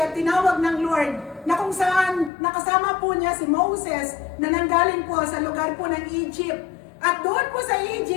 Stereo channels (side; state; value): right; drops out; at 2.3 s